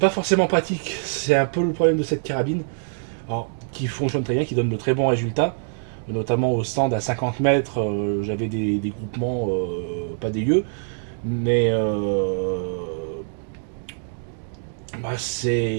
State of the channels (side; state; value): left; silent; digital silence